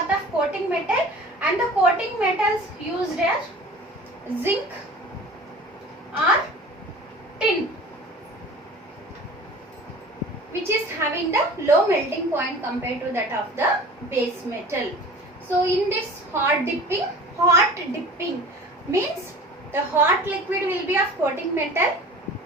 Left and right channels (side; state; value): both; normal; correlation 0.41